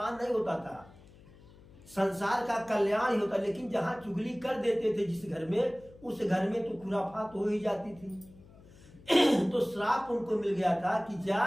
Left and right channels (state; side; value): noise; left; hum, 23 dB below the sound